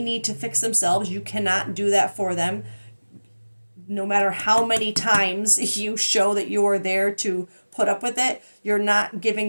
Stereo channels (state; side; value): inverted; both; correlation -1.00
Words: to fix themselves. You cannot do that for them. No matter how many times you show that you are there to put up with it, you're not giving